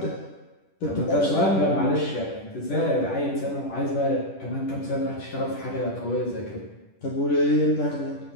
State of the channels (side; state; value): right; late; 10 ms